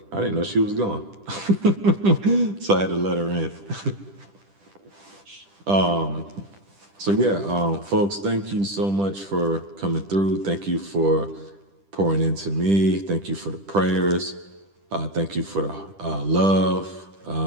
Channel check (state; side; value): late; left; 10 ms